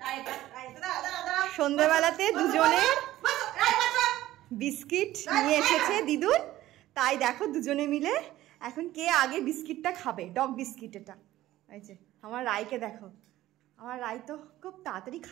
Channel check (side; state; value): left; quieter; 15.1 dB